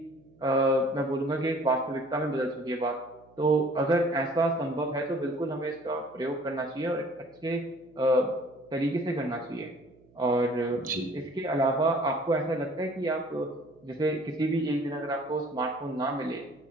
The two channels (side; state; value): right; noise; hum, 29 dB below the sound